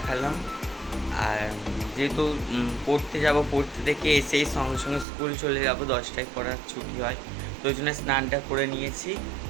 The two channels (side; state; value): left; drops out; at 5.1 s